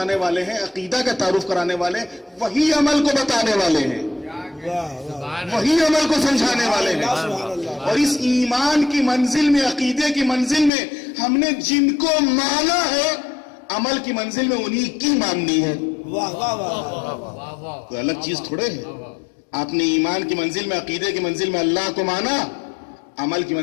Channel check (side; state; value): right; drops out; at 10.7 s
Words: والے ہیں، عقیدہ کا تعارف کرانے والے ہیں، وہی عمل کو بتانے والے ہیں، وہی عمل کو سمجھانے والے ہیں. اور اس ایمان کی منزل میں، عقیدے کی منزل میں ہم نے جن کو مانا ہے، عمل کی منزل میں انہی کی ماننی ہے. کوئی الگ چیز تھوڑے ہے. آپ نے ایمان کی منزل میں، عقیدے کی منزل میں اللہ کو مانا، عمل کی